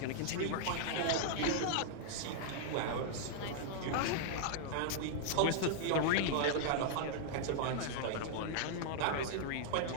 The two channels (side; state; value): both; different; correlation -0.01